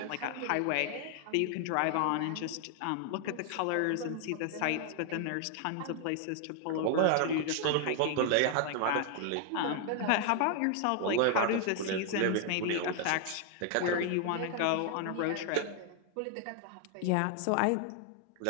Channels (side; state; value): both; different; correlation 0.00